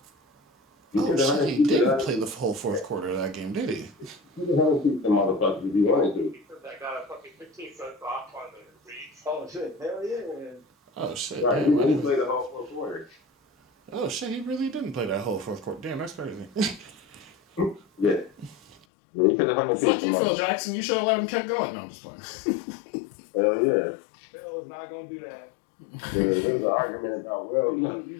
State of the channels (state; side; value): drops out; right; at 18.9 s